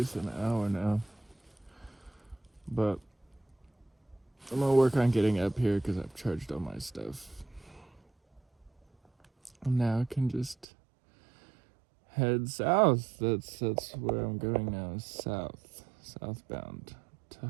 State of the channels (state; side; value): drops out; left; at 10.7 s